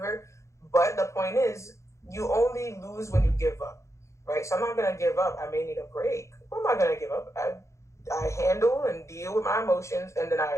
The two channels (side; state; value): right; late; 0.14 ms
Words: But the point is, you only lose when you give up, right? So I'm not gonna give up. I may need a break. What am I gonna give up? I handle and deal with my emotions, and then